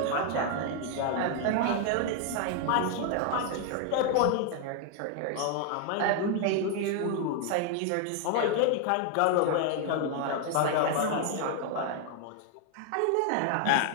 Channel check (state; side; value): different; both; correlation 0.00